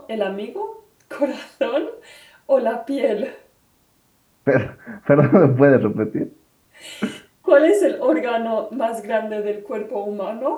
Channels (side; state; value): both; identical; correlation 1.00